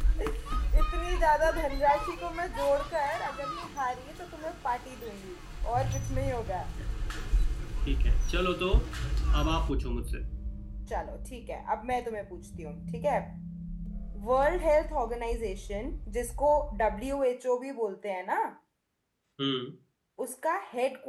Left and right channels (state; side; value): identical; both; correlation 1.00